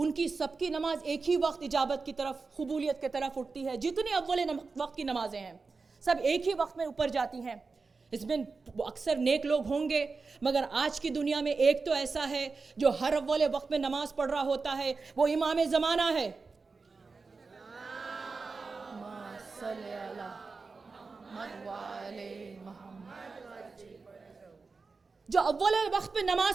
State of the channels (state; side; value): quieter; left; 4.3 dB